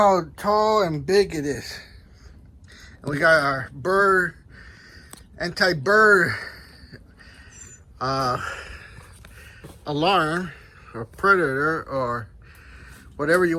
tall and big it is. And we got our anti-bird alarm, or predator, or whatever you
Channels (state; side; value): identical; both; correlation 1.00